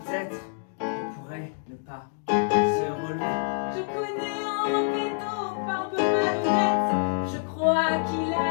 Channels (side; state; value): right; silent; digital silence